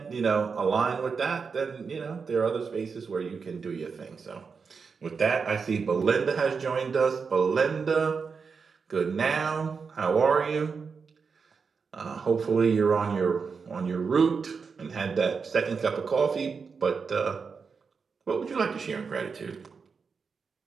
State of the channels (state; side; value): quieter; left; 5.4 dB